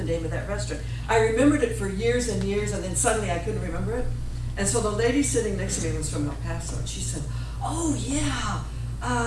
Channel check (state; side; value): identical; both; correlation 1.00